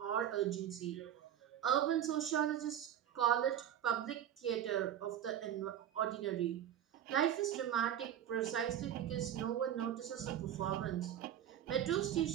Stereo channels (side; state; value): left; quieter; 10.4 dB